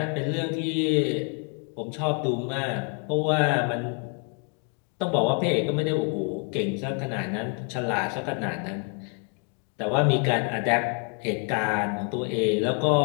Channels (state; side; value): quieter; right; 37.8 dB